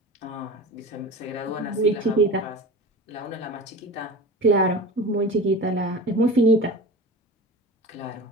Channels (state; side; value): normal; both; correlation 0.33